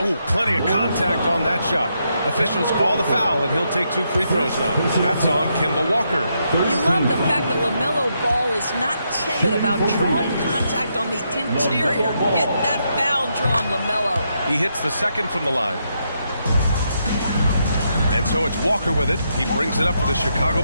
Ooh, plenty of contact on that shot. Officials call the foul, and he'll take 2 free throws now. That's on Kemba Walker. You love the fact that LaMelo Ball is not timid about drawing contact on the interior. Get that foul drawn, LaMelo. He hits the second from the line. And so it's Walker with it. He brings it up for the Chicago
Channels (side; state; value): both; inverted; correlation -0.80